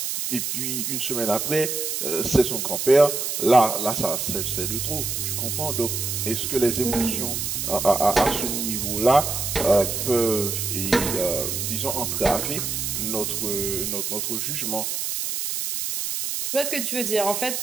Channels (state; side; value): noise; right; hiss, 2 dB below the sound